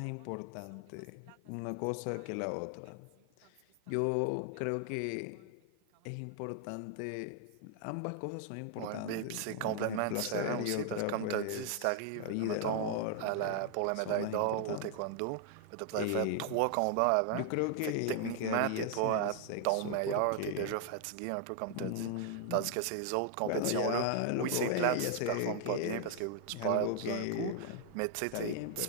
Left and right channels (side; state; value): both; different; correlation 0.00